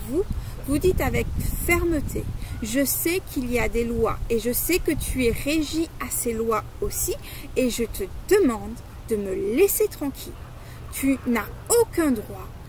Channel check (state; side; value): identical; both; correlation 1.00